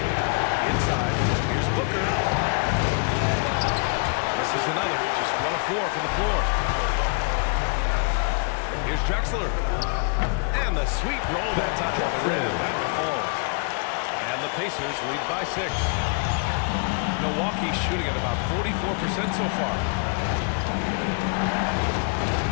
Inside. Here's Booker. As Misses another. Just 1 of 4 from the floor. Here's Drexler. And the sweet roll that time on the rim. That one falls. And the Pacers lead by 6. Milwaukee shooting at about 44% so far.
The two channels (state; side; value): quieter; right; 37.0 dB